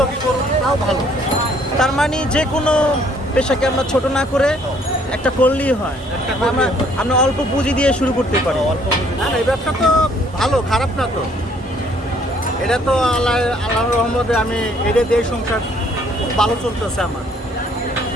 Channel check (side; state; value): both; normal; correlation 0.63